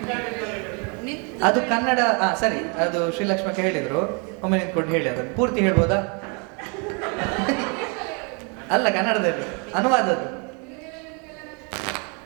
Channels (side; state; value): left; quieter; 34.6 dB